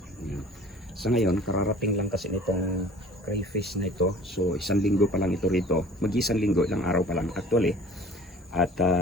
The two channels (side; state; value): both; normal; correlation 0.46